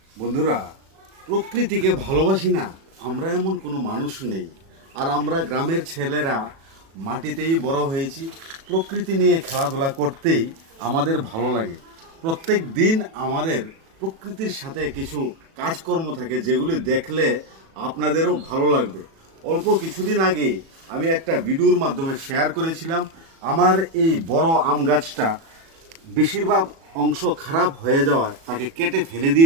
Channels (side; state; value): left; late; 37 ms